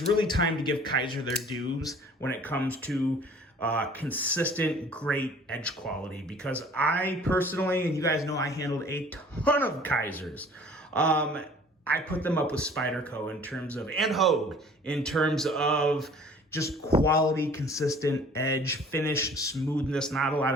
really time to give Kizer their dues when it comes to consistent, great edge quality, because I personally, and you guys know I handled a ton of Kizers. I put them up with Spyderco in terms of, and Hogue, in terms of just quality, consistent edge, finish, smoothness, not a lot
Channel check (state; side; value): normal; both; correlation 0.51